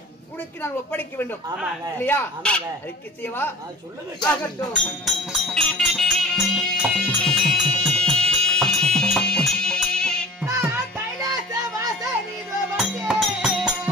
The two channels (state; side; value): normal; both; correlation 0.43